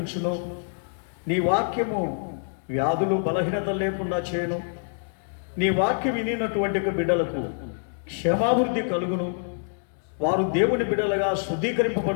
నీ వాక్యము వ్యాధులు బలహీనత లేకుండా చేయను. నీ వాక్యం వినినటువంటి బిడ్డలకు క్షేమాభివృద్ధి కలుగును. వారు దేవుని బిడ్డలుగా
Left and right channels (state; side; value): silent; right; digital silence